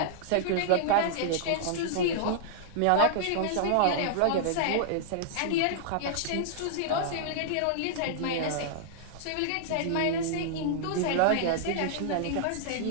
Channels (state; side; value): different; both; correlation -0.01